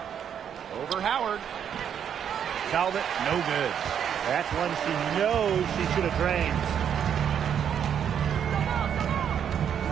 Over Howard. Talbot, no good. That's one she knows she should have drained.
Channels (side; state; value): left; quieter; 8.6 dB